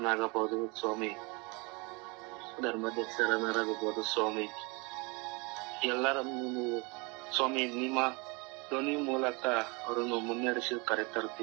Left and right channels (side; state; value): left; quieter; 29.0 dB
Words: ಸ್ವಾಮಿ, ಧರ್ಮದಕ್ಷರನ್ನಾಗಬಹುದು ಸ್ವಾಮಿ, ಎಲ್ಲರನ್ನು ನೀವು ಸ್ವಾಮಿ ನಿಮ್ಮ ಧ್ವನಿ ಮೂಲಕ ಅವರನ್ನು ಮುನ್ನಡೆಸಿ